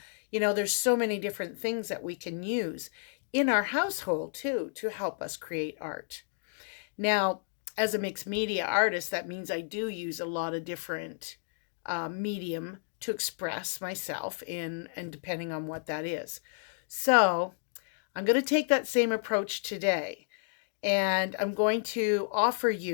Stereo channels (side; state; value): right; silent; digital silence